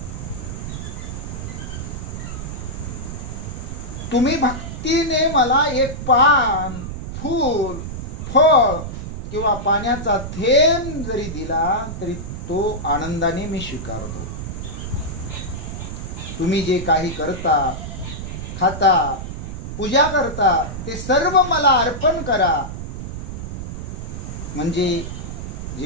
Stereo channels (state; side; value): noise; right; rumble, 7 dB below the sound